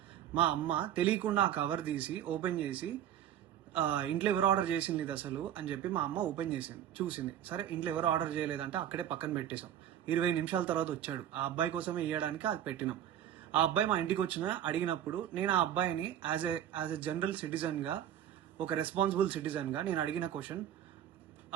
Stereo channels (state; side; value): quieter; left; 10.7 dB